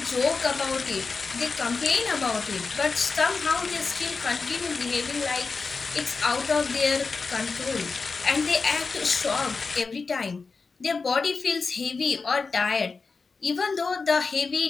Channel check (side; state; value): right; quieter; 4.5 dB